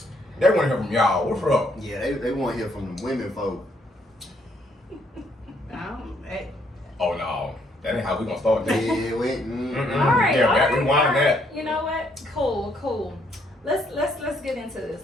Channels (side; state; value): both; normal; correlation 0.70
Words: They want to hear from y'all. What's up? Yeah, they want to hear from the women folk. Oh, no. That ain't how we going to start this. Yeah, wait. All right. Yeah, all back right, rewind all right. that. You know what? Cool. Let's get into this.